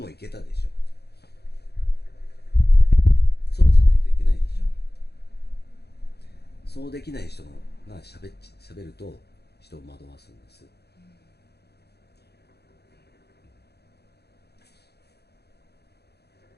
行けたでしょ。そうじゃないといけないでしょ。そうできない人がしゃべると人を惑わすんです。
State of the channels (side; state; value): right; late; 0.48 ms